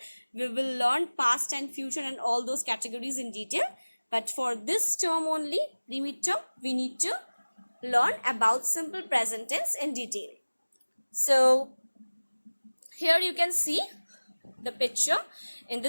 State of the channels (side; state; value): both; inverted; correlation -1.00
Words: we will learn past and future and all those categories in detail. But for this term only, the midterm, we need to learn about simple present tense in detail. So, here you can see the picture. In